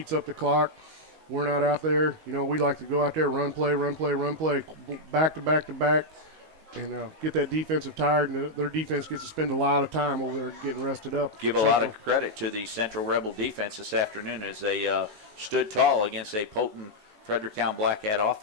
up the clock. We're not out there. We like to go out there, run play, back to back, and get that defensive tired, and their defense gets to spend a lot of time over there getting rested up. Give a lot of credit to the Central Rebel defense this afternoon as they stood tall against a potent Fredericktown Black Cat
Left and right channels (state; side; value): late; left; 19 ms